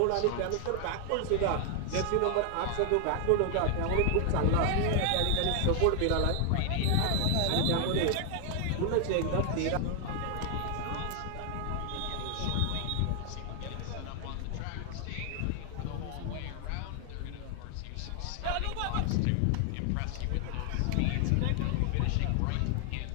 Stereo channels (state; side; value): different; both; correlation 0.00